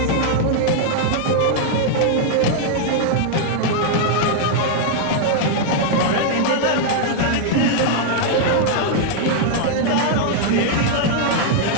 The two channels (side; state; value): both; different; correlation -0.01